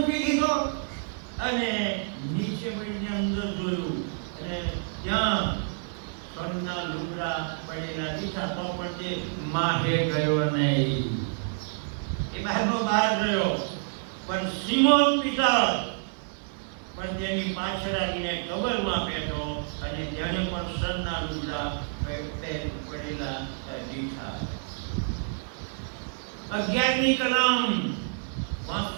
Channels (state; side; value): silent; left; 59 dB below the other